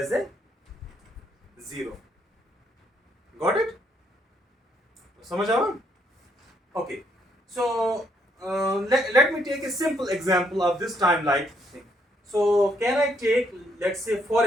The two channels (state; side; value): normal; both; correlation 0.72